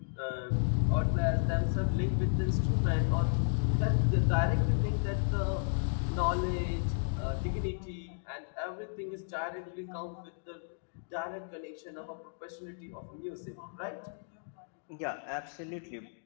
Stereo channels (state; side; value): silent; right; digital silence